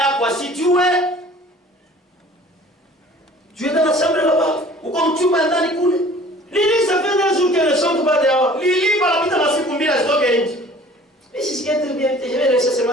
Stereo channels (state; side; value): normal; both; correlation 0.49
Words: asijue, Tu es dans la chambre là-bas. uko mchumba ndani kule. Lili, ça fait 2 jours qu'elle ne chante pas dehors. Lili panapita masiku mbili asitoke nje. Mais si c'est très bien, je vais laisser seulement